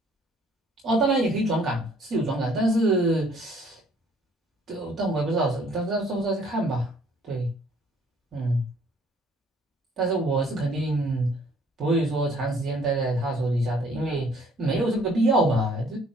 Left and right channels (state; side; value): normal; both; correlation 0.60